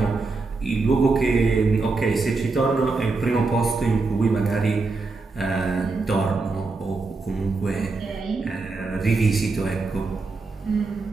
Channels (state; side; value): quieter; left; 3.9 dB